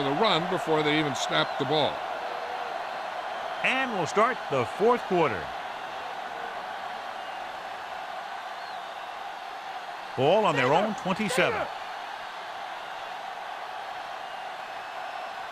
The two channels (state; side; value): identical; both; correlation 1.00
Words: the run before they even snapped the ball. And we'll start the fourth quarter. Ball on their own 27.